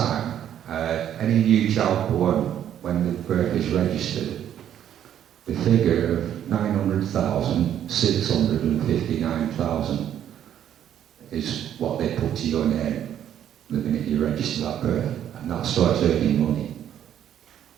any new child born when the birth is registered, the figure of 900,000, 659,000 is what they put to your name the minute you register that birth, and that starts earning money.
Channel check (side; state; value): left; quieter; 10.3 dB